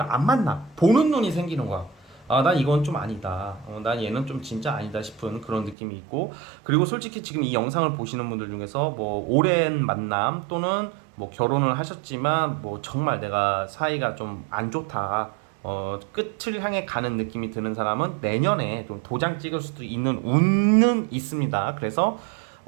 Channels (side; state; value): left; drops out; at 5.8 s